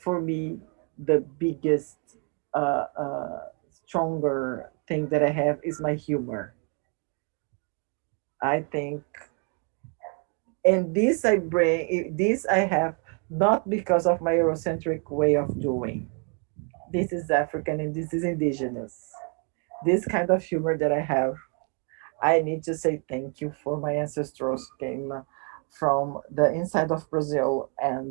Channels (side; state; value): left; quieter; 38.9 dB